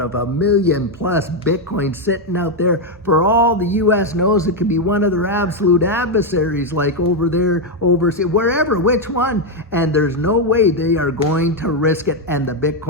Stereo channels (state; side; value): normal; both; correlation 0.03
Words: 1 million plus Bitcoin sitting out there. For all the US knows, it could be one of their absolute adversaries, like over there, overseas, wherever, which one. And there's no way they are going to risk it. And the